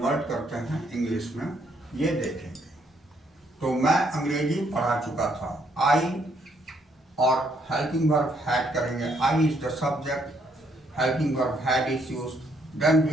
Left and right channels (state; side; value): normal; both; correlation 0.71